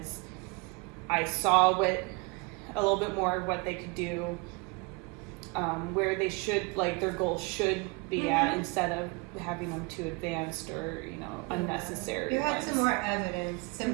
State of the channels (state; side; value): quieter; left; 28.7 dB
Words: I saw a little bit more of what they could do, where they should, like, their goals should be at, instead of having them too advanced or, unnecessary. You had ones. some more evidence, some